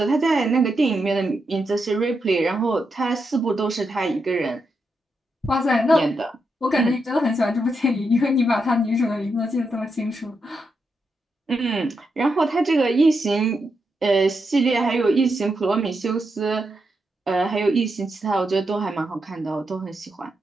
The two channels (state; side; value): normal; both; correlation 0.84